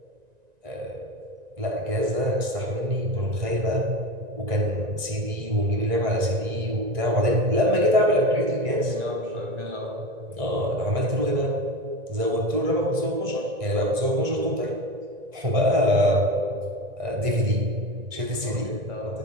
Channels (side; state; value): left; late; 1.9 ms